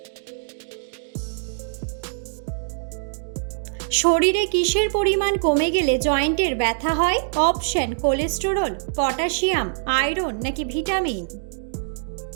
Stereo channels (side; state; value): left; silent; digital silence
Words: শরীরে কিসের পরিমাণ কমে গেলে জয়েন্টের ব্যথা হয়? অপশন কোলেস্টেরল, পটাশিয়াম, আয়রন নাকি ভিটামিন।